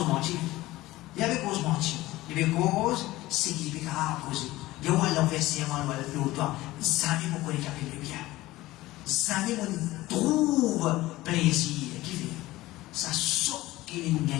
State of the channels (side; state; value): right; quieter; 17.7 dB